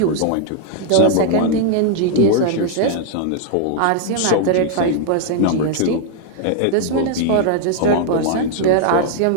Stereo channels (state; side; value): different; both; correlation 0.00